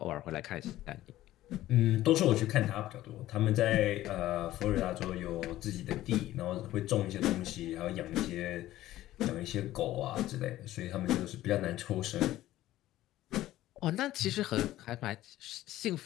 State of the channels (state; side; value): quieter; right; 14.8 dB